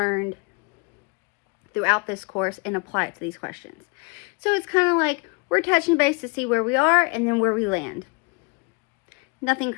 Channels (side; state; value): right; quieter; 30.9 dB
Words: throughout this course, and apply it to these questions. So it's kind of like we're touching base to see where we are and then where we land. Nothing